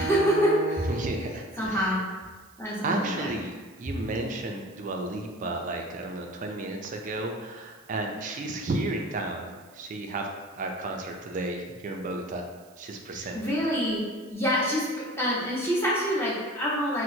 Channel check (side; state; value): right; noise; hiss, 27 dB below the sound